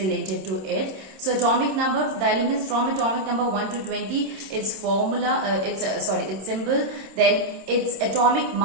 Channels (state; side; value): late; left; 27 ms